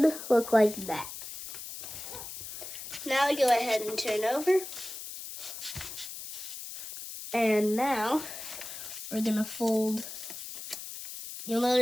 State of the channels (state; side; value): noise; left; hiss, 10 dB below the sound